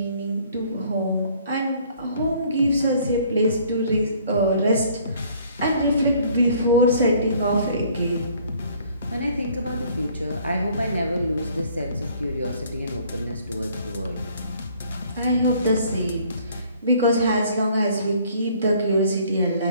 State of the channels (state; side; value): inverted; both; correlation -0.58